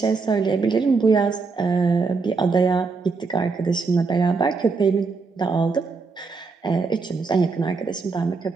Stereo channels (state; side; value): quieter; left; 4.4 dB